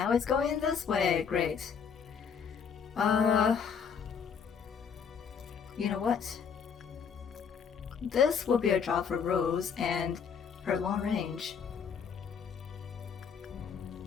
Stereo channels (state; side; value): quieter; right; 6.7 dB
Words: it's going this way, great. You know what? This will be a job for Rose and her long range.